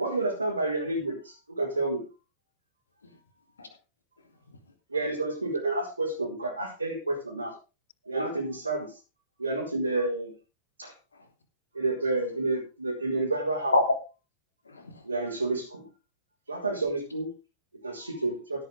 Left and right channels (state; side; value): inverted; both; correlation -0.66